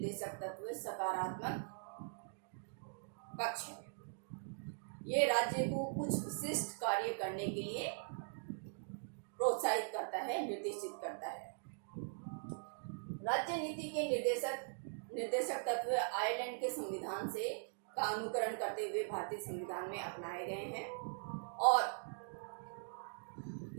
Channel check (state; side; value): silent; left; digital silence